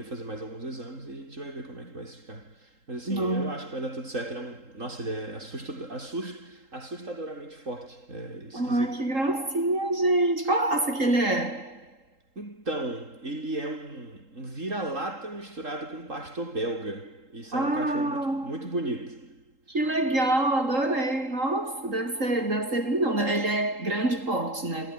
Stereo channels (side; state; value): left; late; 3.8 ms